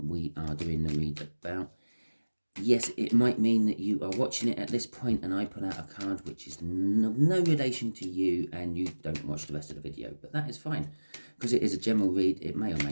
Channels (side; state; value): both; inverted; correlation -1.00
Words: we are doing the read about. Yes, it might mean that you are watching it at this point and I put out a card which is no relation to you and you don't watch the rest of the video, but that is fine because it is a general read. It may or